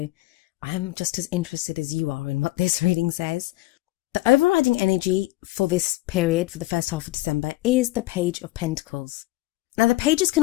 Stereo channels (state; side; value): quieter; right; 18.7 dB